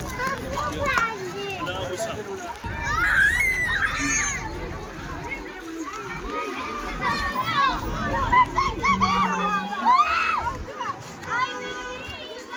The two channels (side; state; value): both; identical; correlation 1.00